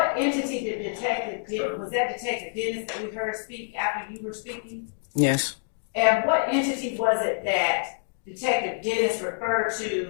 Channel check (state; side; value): silent; right; digital silence